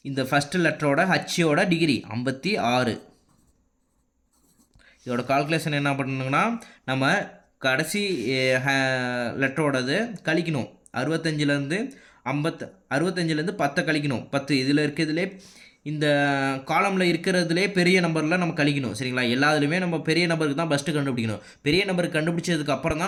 இந்த ஃபஸ்ட்டு லெட்டரோட ஹச்சோட டிகிரி 56. இதோட கால்குலேஷன் என்ன பண்ணணுங்கன்னா நம்ம கடைசி லெட்டரோடது கழிக்கணும். 65லேருந்து 10 கழிக்கணும். 10 இதில் இருக்கிறதுலே இந்த காலமில் இருக்கிறதுலே பெரிய நம்பரில் நம்ம கழிக்கணும். சரிங்களா? எல்லாத்துலேயுமே நம்ம பெரிய நம்பருக்கு தான் ஃபஸ்ட்டு கண்டுபிடிக்கணும். பெரிய நம்பருக்கு கண்டுபிடிச்சதுக்கு அப்புறம் தான்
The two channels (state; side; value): identical; both; correlation 1.00